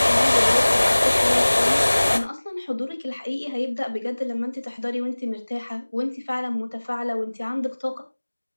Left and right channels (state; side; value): inverted; both; correlation -1.00